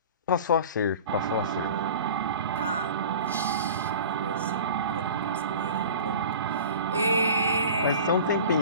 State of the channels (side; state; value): both; inverted; correlation -0.39